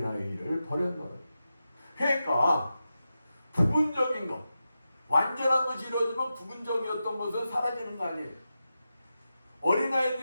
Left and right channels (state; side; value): inverted; both; correlation -0.90